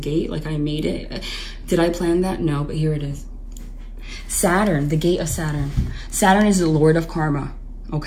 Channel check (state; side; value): identical; both; correlation 1.00